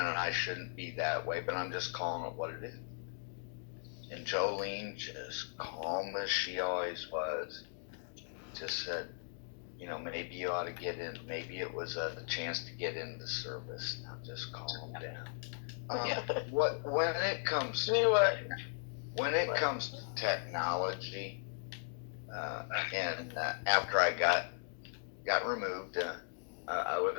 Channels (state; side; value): silent; right; digital silence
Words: shouldn't be that way, but I'm just calling it what it is. And Jolene, just calm as she always was, just said, maybe you ought to get in. Maybe it was a chance to get into service. Now just calm down. When it comes to technology, and after I got removed, I